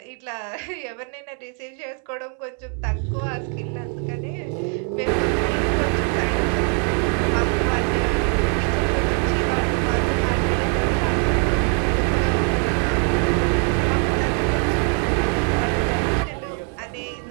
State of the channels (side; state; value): left; quieter; 39.7 dB